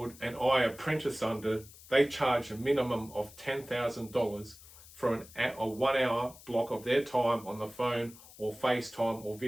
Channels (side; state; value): left; noise; hiss, 20 dB below the sound